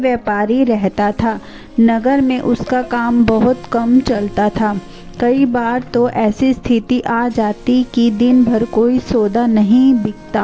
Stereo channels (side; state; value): both; identical; correlation 1.00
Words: रहता था। नगर में उसका काम बहुत कम चलता था। कई बार तो ऐसी स्थिति आ जाती कि दिन भर कोई सौदा नहीं